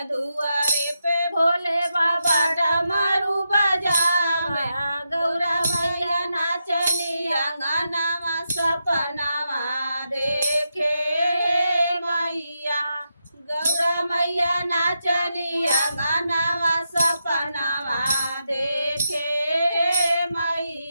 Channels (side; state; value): both; inverted; correlation -0.85